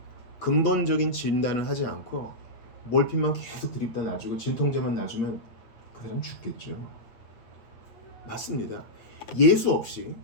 근본적인 진단을 하지 않고 몰핀만 계속 드립다 놔주고 진통제만 놔주면 그 사람 죽겠죠. 맞습니다. 예수 없이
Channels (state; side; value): late; right; 8.7 ms